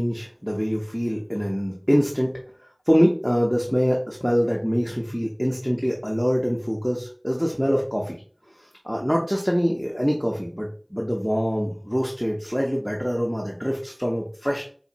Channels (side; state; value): both; identical; correlation 1.00